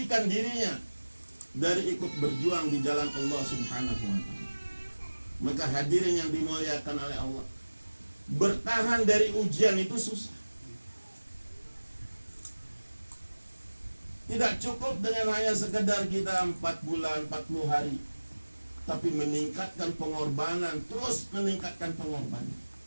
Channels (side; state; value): both; inverted; correlation -1.00